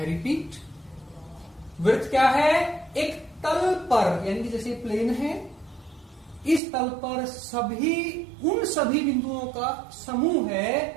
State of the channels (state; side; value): drops out; left; at 6.6 s